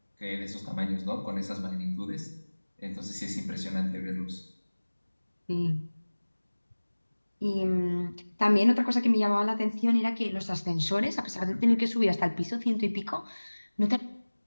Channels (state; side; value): inverted; both; correlation -1.00